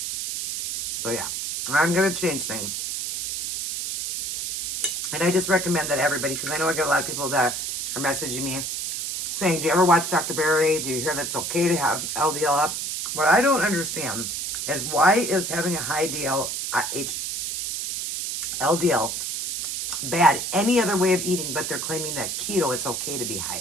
So, yeah. I'm going to change things. And I just recommend that everybody, because I know I get a lot of people that are messaging me saying, do you ever watch Dr. Barry? Do you hear that it's okay to have LDL up? What I don't understand is why is having a high LDL bad any other way of eating, but they're claiming that keto, it's okay to be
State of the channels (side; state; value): right; noise; hiss, 3 dB below the sound